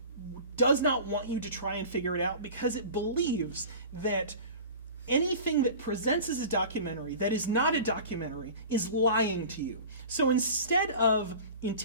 does not want you to try and figure it out because it believes that anything that presents as a documentary that is not a documentary is lying to you. So instead of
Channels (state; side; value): inverted; both; correlation -0.38